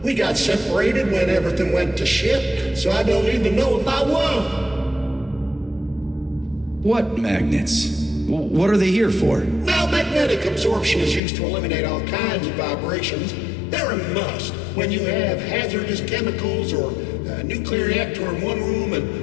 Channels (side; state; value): right; drops out; at 11.2 s